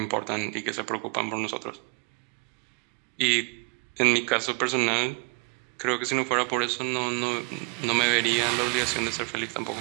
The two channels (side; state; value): left; quieter; 32.3 dB